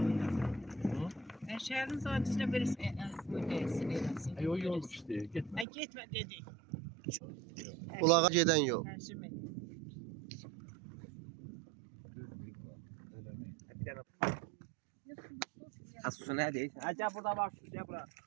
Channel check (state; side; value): drops out; left; at 5.7 s